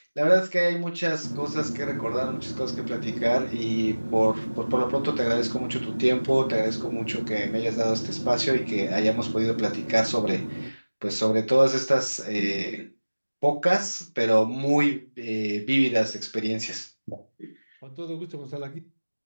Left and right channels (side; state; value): both; inverted; correlation -1.00